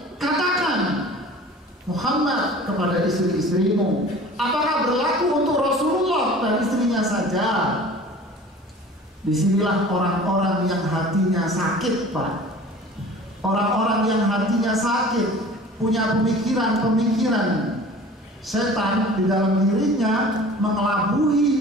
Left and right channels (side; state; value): both; normal; correlation 0.43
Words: katakan Muhammad kepada istri-istrimu. Apakah berlaku untuk Rasulullah dan istrinya saja? Disinilah orang-orang yang hatinya sakit, Pak. Orang-orang yang hatinya sakit, punya pemikiran-pemikiran setan di dalam dirinya,